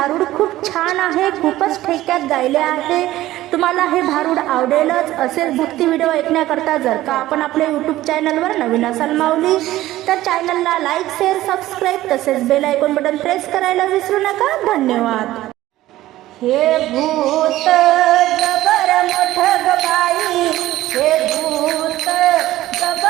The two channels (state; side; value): quieter; left; 15.5 dB